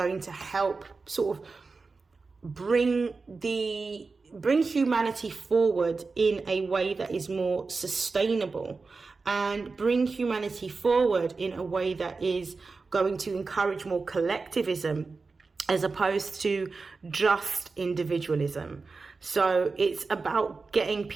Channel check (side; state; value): left; quieter; 4.2 dB